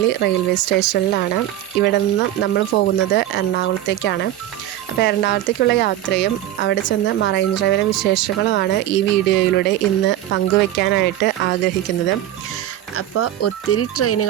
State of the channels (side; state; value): left; quieter; 12.9 dB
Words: റെയിൽവേ സ്റ്റേഷനിലാണ്. ഇവിടെ നിന്ന് നമ്മൾ പോകുന്നത് എറണാകുളത്തേക്കാണ്. അപ്പോൾ എറണാകുളത്തേക്കുള്ള യാത്രയും അവിടെ ചെന്ന് മറൈൻ ഡ്രൈവിലെ വിശേഷങ്ങളുമാണ് ഈ വീഡിയോയിലൂടെ ഇന്ന് പങ്കുവയ്ക്കാനായിട്ട് ആഗ്രഹിക്കുന്നത്. അപ്പോൾ ഒത്തിരി